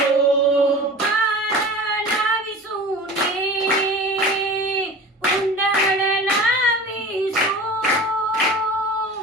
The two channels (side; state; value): both; normal; correlation 0.37